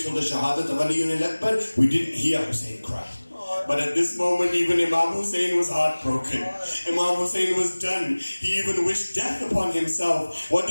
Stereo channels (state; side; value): inverted; both; correlation -1.00